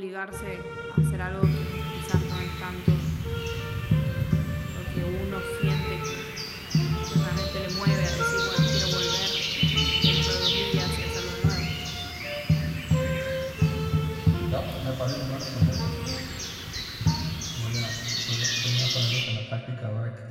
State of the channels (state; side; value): identical; both; correlation 1.00